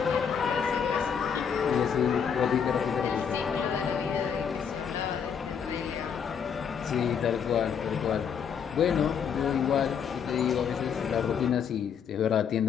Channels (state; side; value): quieter; right; 7.3 dB